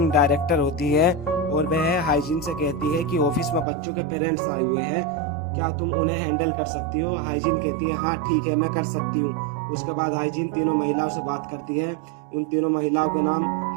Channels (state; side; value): drops out; left; at 3.7 s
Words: डायरेक्टर होती है। और वह हाइजीन से कहती है कि ऑफिस में बच्चों के पेरेंट्स आए हुए हैं, क्या तुम उन्हें हैंडल कर सकती हो। हाइजीन कहती है हाँ ठीक है, मैं कर सकती हूँ। उसके बाद हाइजीन तीनों महिलाओं से बात करती है। उन तीनों महिलाओं का नाम